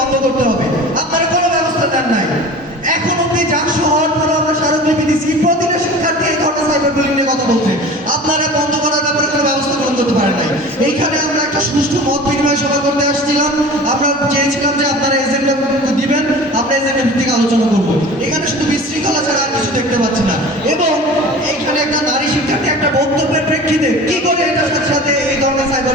করতে হবে। আপনারা কোনো ব্যবস্থা দেন নাই। এখন অব্দি জাকসু হওয়ার পরও আমরা স্মারকলিপি দিচ্ছি, প্রতিটা শিক্ষার্থী এই ধরনের সাইবার বুলিং নিয়ে কথা বলছে। আপনারা বন্ধ করার ব্যাপারে কোনো ব্যবস্থা গ্রহণ করতে পারেন নাই। এইখানে আমরা একটা সুষ্ঠু মত বিনিময় সভা করতে আসছিলাম। আমরা চেয়েছিলাম যে আপনারা এজেন্ডা দিবেন, আমরা এজেন্ডা ভিত্তিক আলোচনা করবো। এখানে শুধু বিশৃঙ্খলা ছাড়া আর কিছু দেখতে পাচ্ছি না। এবং এইখানে একটা নারী শিক্ষার্থী একটা বক্তব্যের প্রেক্ষিতে কি করে এটার সাথে সাথে এই ধরনের সাইবার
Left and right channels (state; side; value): normal; both; correlation 0.39